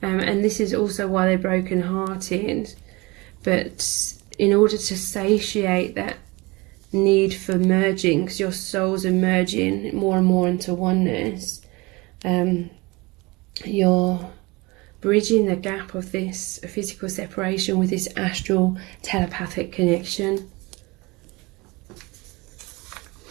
this is also why they're broken-hearted. But in order to satiate that need for merging, because your souls are merging more and more into oneness, you're bridging the gap of this physical separation with this astral telepathic connection.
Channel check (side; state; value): left; quieter; 24.2 dB